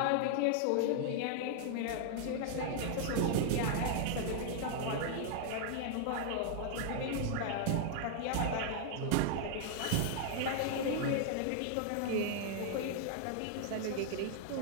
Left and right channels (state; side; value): different; both; correlation -0.01